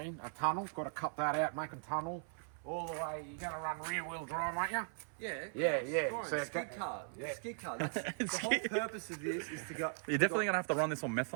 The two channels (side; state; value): left; silent; 52 dB below the other